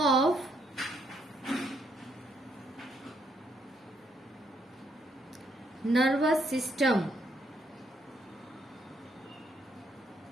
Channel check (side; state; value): both; normal; correlation 0.73